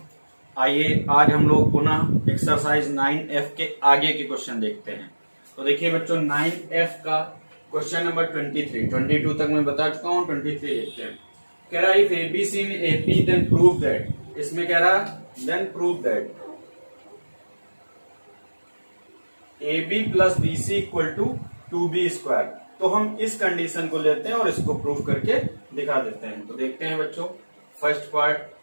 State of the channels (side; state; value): both; inverted; correlation -1.00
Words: आइए आज हम लोग पुनः एक्सरसाइज 9F के आगे के क्वेश्चन देखते हैं। तो देखिए बच्चों 9F का क्वेश्चन नंबर 22 तक मैं बता चुका हूँ। 23 देखते हैं। कह रहा है if ABC in AP then prove that, इसमें कह रहा then prove that AB plus BC equal to 2B square. तो हम इस कंडीशन को लेते हैं और इसको प्रूव करके दिखा देते हैं। तो देखते हैं बच्चों, first part